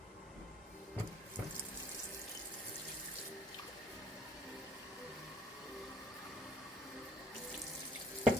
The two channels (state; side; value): normal; both; correlation 0.59